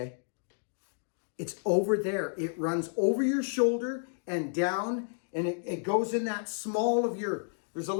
It's over there. It runs over your shoulder and down, and it goes in that small of your, there's a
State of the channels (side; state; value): right; silent; digital silence